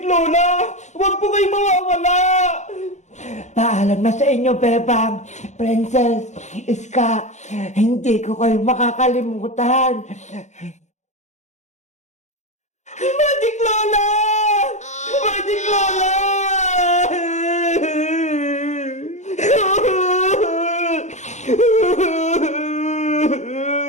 Lola! Huwag po kayo mawawala! Paalam na sa inyo, Bebang. Princess, Iska, hindi ko kayo makakalimutan. Magic Lola! Magic Lola!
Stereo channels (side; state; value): right; late; 0.34 ms